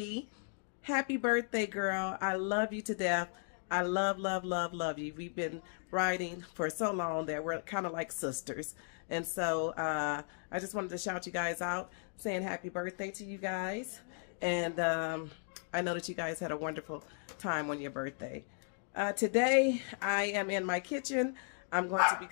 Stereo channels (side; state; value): right; silent; 54 dB below the other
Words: Happy birthday, girl. I love you to death. I love you. We've been riding for so long that we're kind of like sisters. And so I just wanted to shout you guys out, saying happy birthday to you guys. And I know that you guys had a wonderful time on your birthday. Today, I am in my kitchen. I'm going to be